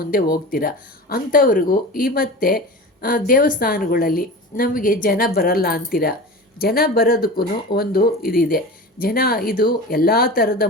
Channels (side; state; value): both; normal; correlation 0.32